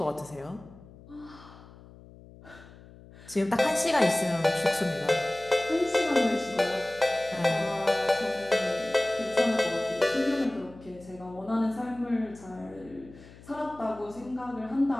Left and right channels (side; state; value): left; noise; hum, 21 dB below the sound